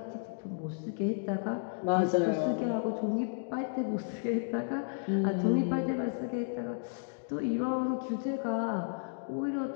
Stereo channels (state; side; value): silent; right; digital silence